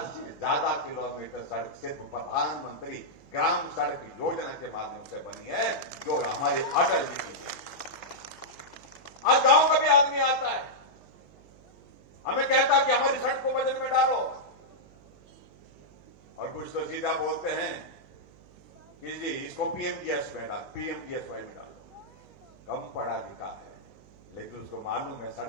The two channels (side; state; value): right; noise; hum, 25 dB below the sound